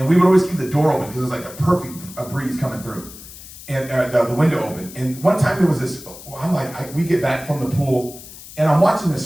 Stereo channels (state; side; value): noise; left; hiss, 16 dB below the sound